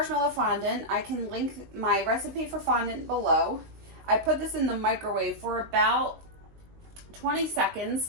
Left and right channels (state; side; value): late; left; 19 ms